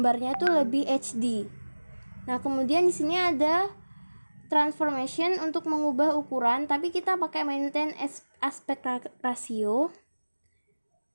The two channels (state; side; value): inverted; both; correlation -1.00